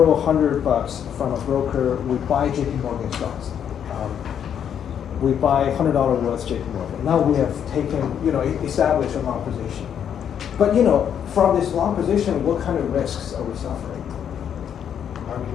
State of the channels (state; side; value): quieter; right; 8.7 dB